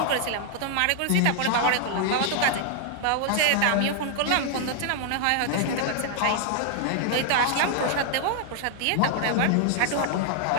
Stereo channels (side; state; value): both; different; correlation 0.00